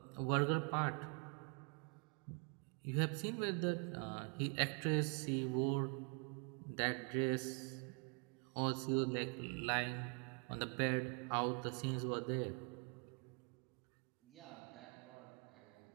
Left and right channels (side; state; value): left; quieter; 37.1 dB